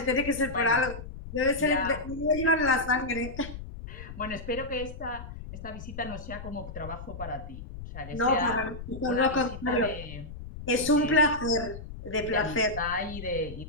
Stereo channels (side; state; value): left; noise; rumble, 11 dB below the sound